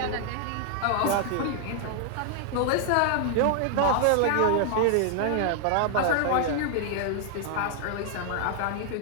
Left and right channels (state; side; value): different; both; correlation 0.00